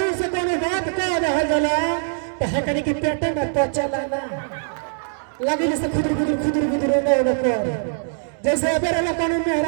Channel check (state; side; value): silent; left; digital silence